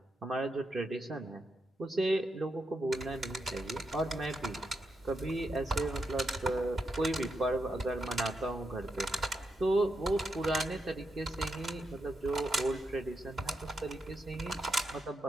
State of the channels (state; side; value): normal; both; correlation 0.83